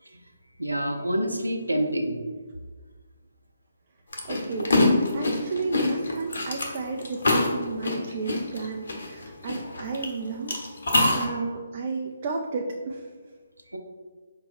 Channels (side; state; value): both; inverted; correlation -0.77